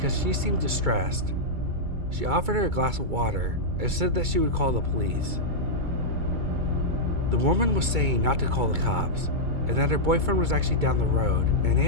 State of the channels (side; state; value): left; late; 2.3 ms